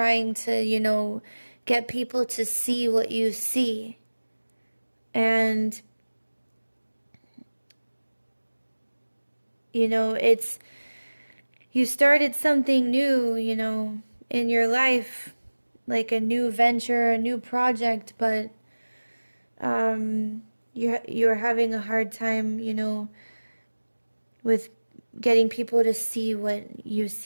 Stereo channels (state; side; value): inverted; both; correlation -1.00